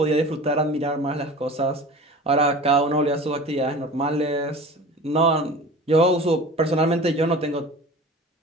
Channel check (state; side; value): normal; both; correlation 0.39